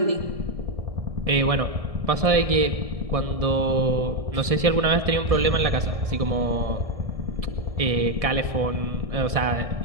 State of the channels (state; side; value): late; left; 1.7 ms